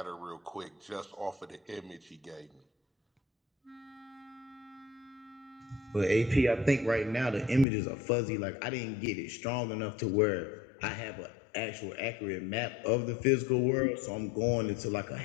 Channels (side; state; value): right; drops out; at 7.7 s